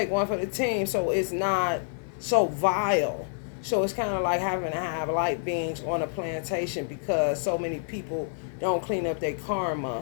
one for the team so it's not so vile. So it's kind of like having to have light beams on a plantation because so many people don't clean up their karma.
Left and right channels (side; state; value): right; silent; 57 dB below the other